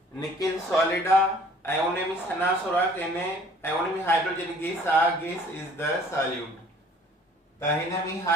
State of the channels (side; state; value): both; normal; correlation 0.54